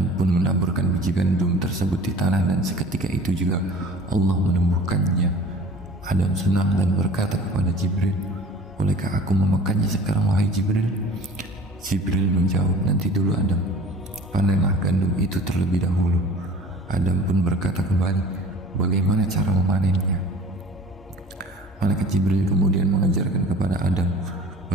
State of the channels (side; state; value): both; normal; correlation 0.44